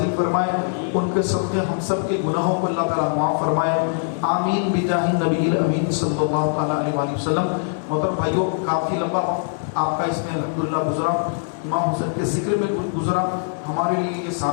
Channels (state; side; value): silent; right; 59 dB below the other